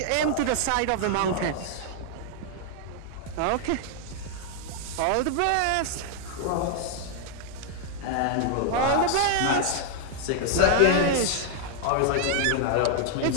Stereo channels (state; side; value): different; both; correlation 0.00